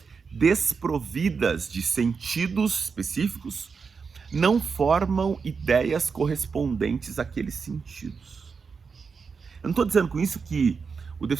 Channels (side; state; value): left; quieter; 5.4 dB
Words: desprovidas de sentidos específicos não formam ideias correspondentes àqueles sentidos. Eu não estou dizendo com isso que o